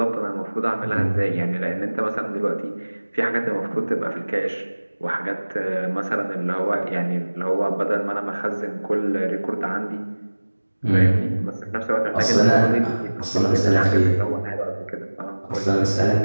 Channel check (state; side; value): inverted; both; correlation -1.00